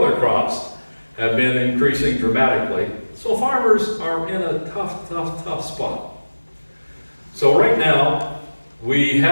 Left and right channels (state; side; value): inverted; both; correlation -1.00